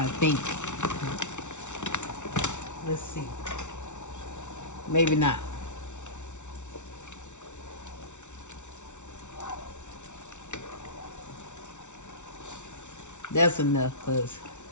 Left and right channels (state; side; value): late; right; 0.84 ms